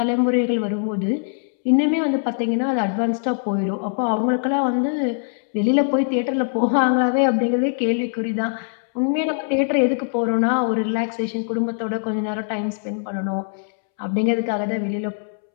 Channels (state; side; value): silent; right; 64 dB below the other